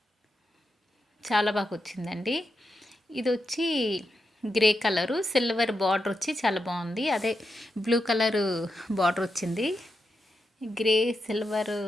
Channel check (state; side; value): normal; both; correlation 0.86